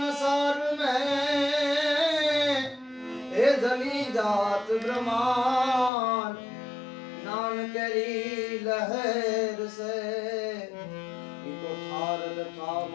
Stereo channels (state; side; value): drops out; right; at 5.9 s